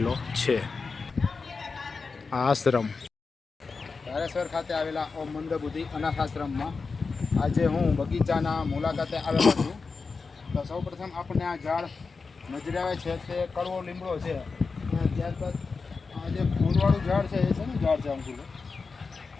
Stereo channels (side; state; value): right; quieter; 4.6 dB